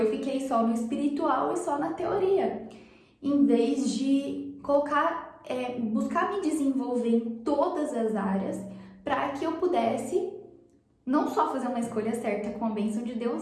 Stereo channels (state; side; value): identical; both; correlation 1.00